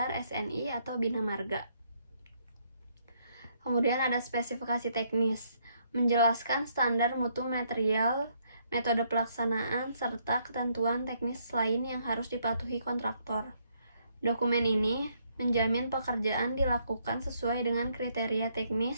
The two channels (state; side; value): inverted; both; correlation -0.71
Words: SNI atau Bina Marga. Kemudian ada spesifikasi teknis, menjelaskan standar mutu material, metode pelaksanaan, serta ketentuan teknis lain yang harus dipatuhi kontraktor. Dokumen ini menjamin pekerjaan dilakukan sesuai dengan kriteria